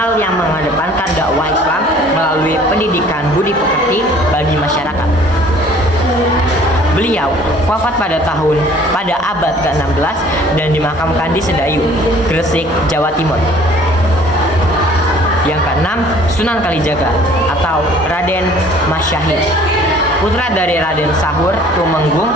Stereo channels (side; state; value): both; normal; correlation 0.53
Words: yang mengedepankan dakwah Islam melalui pendidikan budi pekerti bagi masyarakat. Beliau wafat pada abad ke-16 dan dimakamkan di Sedayu, Gresik, Jawa Timur. Yang keenam, Sunan Kalijaga atau Raden Masyahid, putra dari Raden Sahur Tumenggung